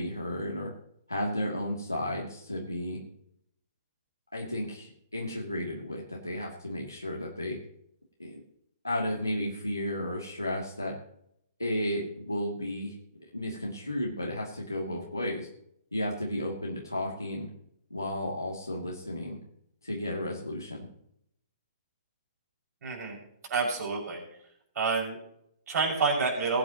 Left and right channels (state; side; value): inverted; both; correlation -0.61